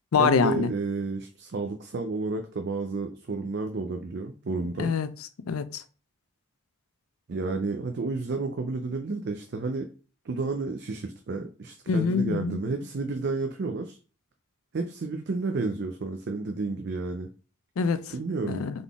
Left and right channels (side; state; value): both; normal; correlation 0.34